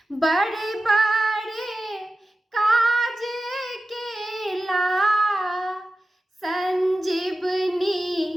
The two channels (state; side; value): normal; both; correlation 0.94